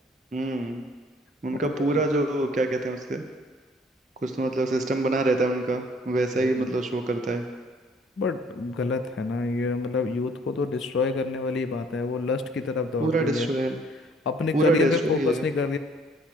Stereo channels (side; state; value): both; normal; correlation 0.59